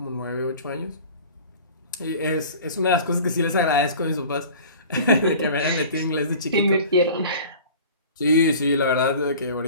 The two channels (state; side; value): inverted; both; correlation -0.42